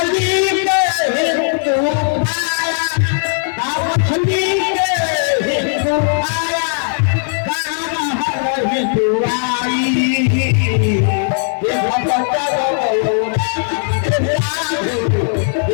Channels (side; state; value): right; silent; digital silence